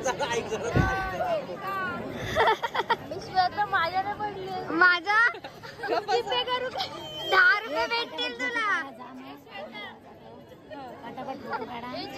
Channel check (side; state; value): both; identical; correlation 1.00